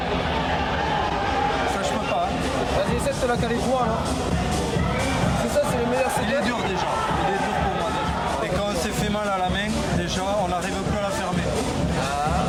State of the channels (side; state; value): both; identical; correlation 1.00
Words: Ça, je peux pas. Vas-y, essaie de te la caler droit là. C'est ça, c'est le meilleur Il est dur déjà. Il est dur pour moi déjà. Et quand on s'est fait mal à la main, déjà, on n'arrive plus à la fermer.